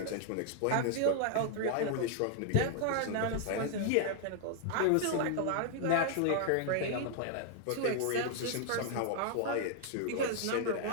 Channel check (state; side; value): different; both; correlation 0.00